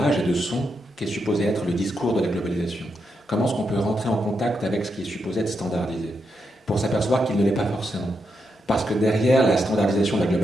et de sons qui est supposé être le discours de la globalisation. Comment est-ce qu'on peut rentrer en contact avec ce qui est supposé être standardisé, pour s'apercevoir qu'il ne l'est pas forcément. Parce que derrière la standardisation de la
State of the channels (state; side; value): normal; both; correlation 0.83